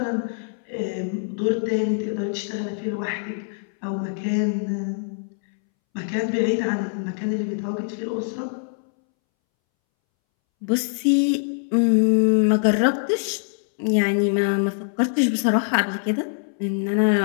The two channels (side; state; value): right; silent; 63 dB below the other